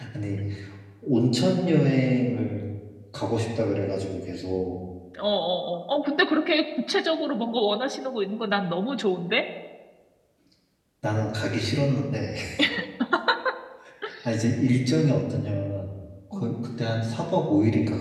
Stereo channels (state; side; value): identical; both; correlation 1.00